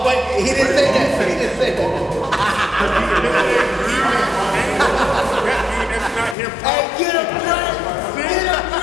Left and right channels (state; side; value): drops out; right; at 6.4 s